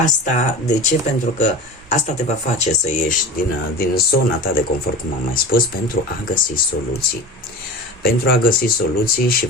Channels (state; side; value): normal; both; correlation 0.33